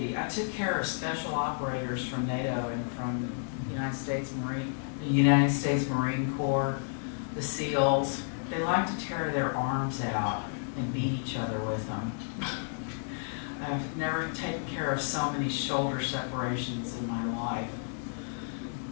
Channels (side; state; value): right; silent; digital silence